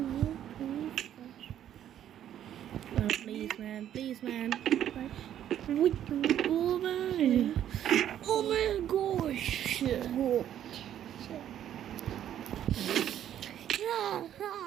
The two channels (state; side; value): quieter; left; 10.8 dB